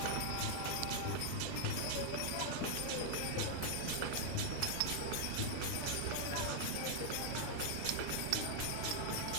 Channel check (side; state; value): both; different; correlation 0.00